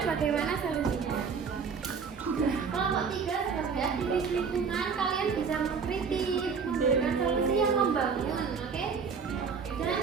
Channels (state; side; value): quieter; left; 5.8 dB